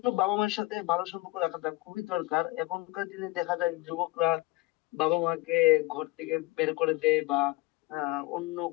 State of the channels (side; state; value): right; quieter; 20.7 dB